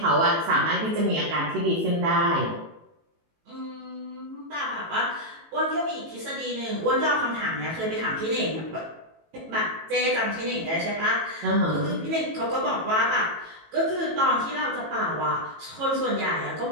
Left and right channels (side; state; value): left; late; 18 ms